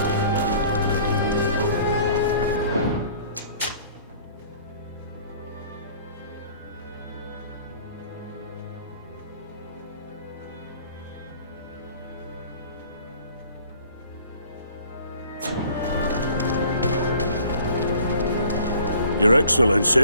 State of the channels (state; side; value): inverted; both; correlation -0.52